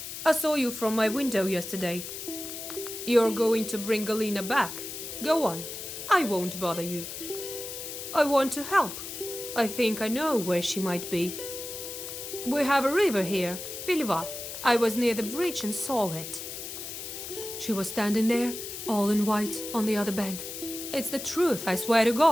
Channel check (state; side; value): noise; left; hiss, 8 dB below the sound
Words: I saw you from my window yesterday. You're going to bring Galina back. Go on. I won't bother you. I want to help. I think I know where she might be. We have a river here, Piliva. I was near the bridge and saw it. She was standing there, all in white, on the other bank. It's the truth, I swear to